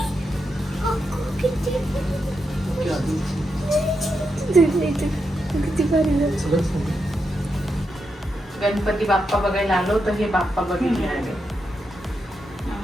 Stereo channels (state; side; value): normal; both; correlation 0.85